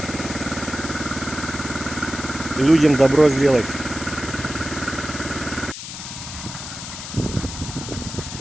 Людям добро сделать.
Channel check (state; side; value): noise; left; hiss, 9 dB below the sound